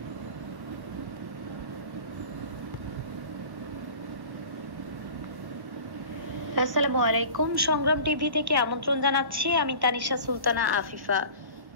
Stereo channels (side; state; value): left; late; 1.1 ms